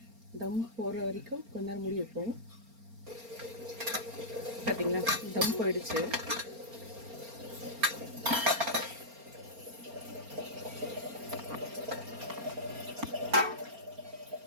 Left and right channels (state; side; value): late; left; 4.3 ms